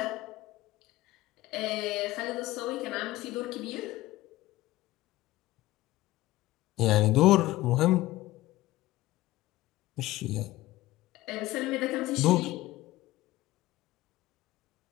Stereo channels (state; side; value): quieter; right; 17.3 dB